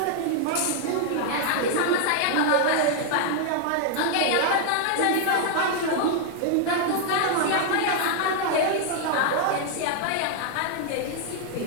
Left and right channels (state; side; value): different; both; correlation 0.00